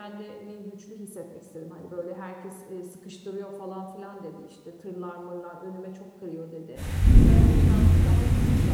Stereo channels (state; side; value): identical; both; correlation 1.00